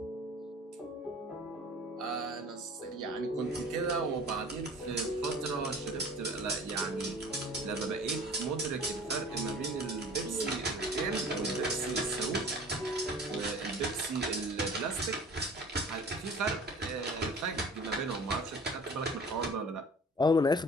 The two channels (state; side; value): normal; both; correlation 0.45